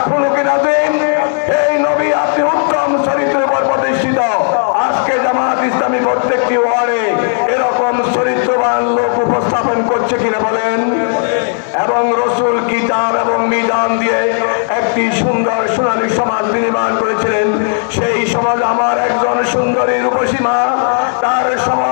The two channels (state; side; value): silent; right; 62 dB below the other